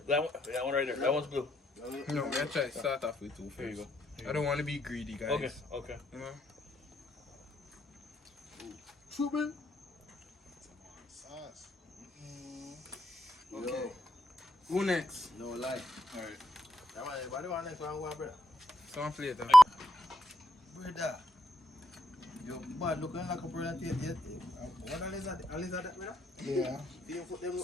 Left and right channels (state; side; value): normal; both; correlation 0.79